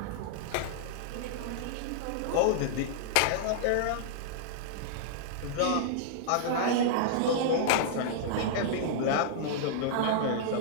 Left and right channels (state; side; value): different; both; correlation -0.02